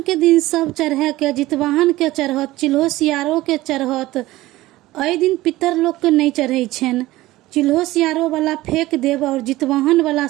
के दिन सब चढ़ा के, जितवाहन के चढ़त, चिल्हो सियारो के चढ़त। एहि दिन पितर लोग के नहीं चढ़ै छनि। चिल्हो सियारो वाला फेंक देब और जितवाहन वाला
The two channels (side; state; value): left; quieter; 17.5 dB